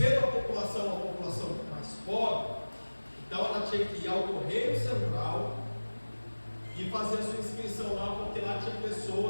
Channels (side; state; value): both; inverted; correlation -1.00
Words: a população mais pobre, então ela tinha que ir ao Correio Central e fazer a sua inscrição lá, porque lá tinha